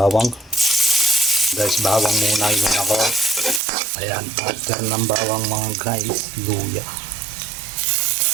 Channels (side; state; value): left; drops out; at 3.6 s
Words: Guys, bawang muna yun ako. Ayan, after ng bawang mga guys, luya.